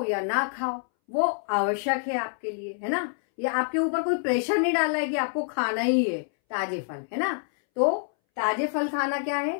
या ना खाओ वो आवश्यक है आपके लिए, है ना। ये आपके ऊपर कोई प्रेशर नहीं डाला है कि आपको खाना ही है ताजे फल, है ना। तो ताजे फल खाना क्या है,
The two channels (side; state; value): right; silent; 60 dB below the other